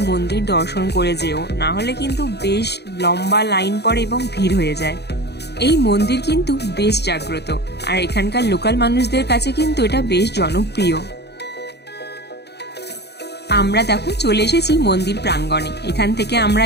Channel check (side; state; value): right; late; 0.48 ms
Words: মন্দির দর্শন করে যেও, না হলে কিন্তু বেশ লম্বা লাইন পড়ে এবং ভিড় হয়ে যায়। এই মন্দির কিন্তু বেশ জাগ্রত, আর এখানকার লোকাল মানুষদের কাছে কিন্তু এটা বেশ জনপ্রিয়। আমরা দেখো চলে এসেছি মন্দির প্রাঙ্গণে। এখান থেকে আমরা